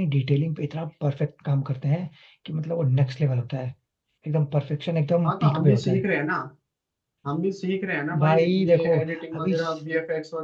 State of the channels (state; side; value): identical; both; correlation 1.00